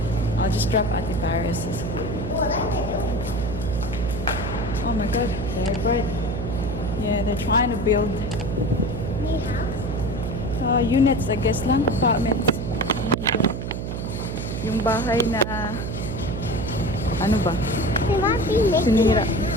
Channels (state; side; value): noise; right; hum, 4 dB below the sound